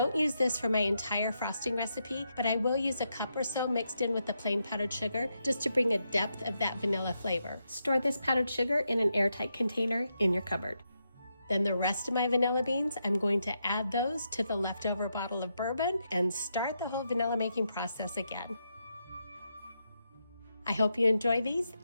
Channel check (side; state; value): both; inverted; correlation -0.83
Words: use this for my entire frosting recipe, but I will use a cup or so mixed in with the plain powdered sugar just to bring a depth of that vanilla flavor. Store this powdered sugar in an airtight container in your cupboard. Then the rest of my vanilla beans, I'm going to add those to the leftover bottle of bourbon and start the whole vanilla making process again. I hope you enjoy these.